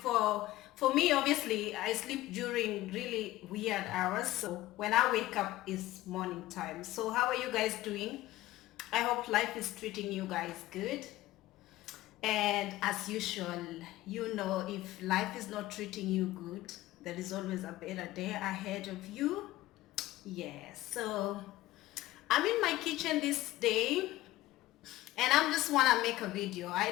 for me. Obviously, I sleep during really weird hours. So when I wake up, it's morning time. So how are you guys doing? I hope life is treating you guys good. And as usual, you know, if life is not treating you good, there is always a better day ahead of you. Yes. So I'm in my kitchen this day and I'm just wanna make a video. I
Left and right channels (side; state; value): right; quieter; 16.7 dB